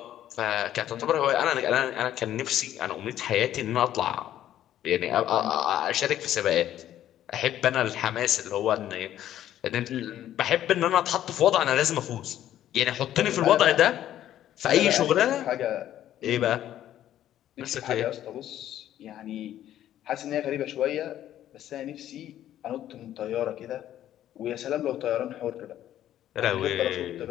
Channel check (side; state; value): right; quieter; 12.0 dB